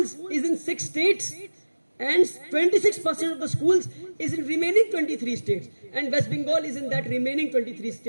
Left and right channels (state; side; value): inverted; both; correlation -1.00